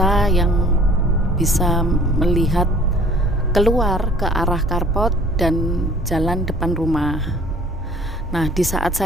yang bisa melihat keluar ke arah carport dan jalan depan rumah. Nah, di saat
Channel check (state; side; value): normal; both; correlation 0.52